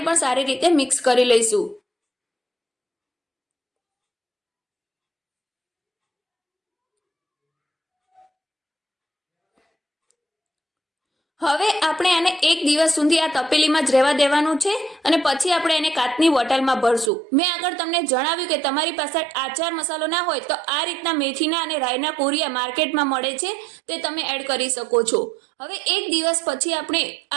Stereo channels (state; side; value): drops out; left; at 17.1 s